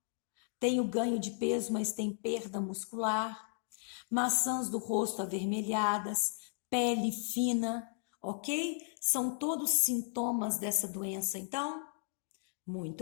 tem o ganho de peso, mas tem perda muscular, maçãs do rosto avermelhadas, pele fina, ok? São todos sintomas dessa doença, então?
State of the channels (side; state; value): right; silent; digital silence